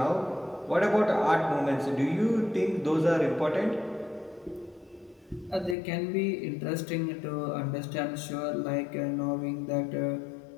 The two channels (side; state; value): right; drops out; at 5.8 s